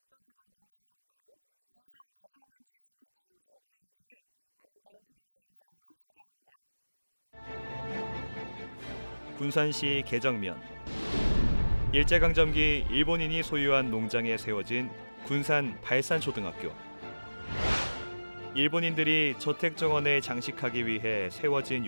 중 순국한 군산 개정면 출신의 최호 장군의 유지를 아름다운 드론의 영상으로 소개합니다. 군산시 개정면. 일제강점기 일본인이 소유한 농장에 세워진 군산 발산초등학교. 일본인들이 저택 정원에 장식하기 위해 세워진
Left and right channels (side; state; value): both; inverted; correlation -1.00